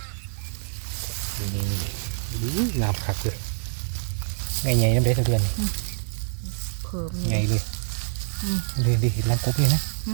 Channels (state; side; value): silent; left; digital silence